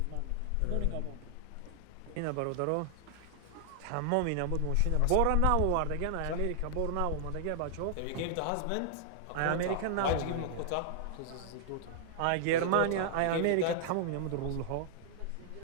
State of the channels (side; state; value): both; different; correlation -0.01